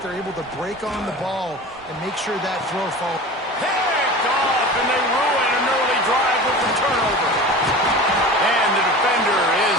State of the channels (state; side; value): normal; both; correlation 0.35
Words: They're able to break on the ball and make sure that throw falls. Picked off, and they ruin an early drive with the turnover. And the defender is